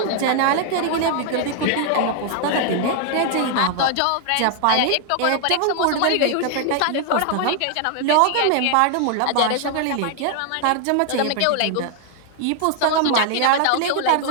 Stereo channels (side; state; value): both; different; correlation 0.00